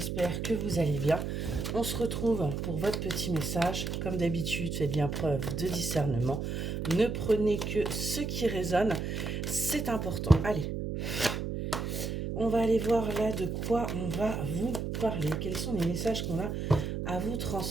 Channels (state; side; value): noise; right; hum, 3 dB below the sound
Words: que vous allez bien. On se retrouve pour votre petit message. Comme d'habitude, faites bien preuve de discernement. Ne prenez que ce qui résonne, c'est important. Allez, on va aller voir là de quoi on va vous parler. Quels sont les messages qu'on a à vous